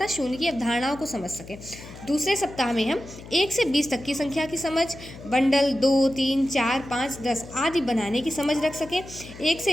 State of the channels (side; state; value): left; noise; hum, 15 dB below the sound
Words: शून्य की अवधारणाओं को समझ सकें। दूसरे सप्ताह में हम 1 से 20 तक की संख्या की समझ, बंडल 2, 3, 4, 5, 10 आदि बनाने की समझ रख सकें, 1 से